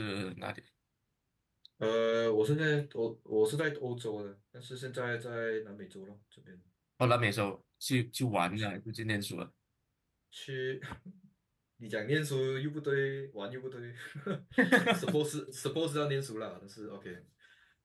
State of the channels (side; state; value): both; identical; correlation 1.00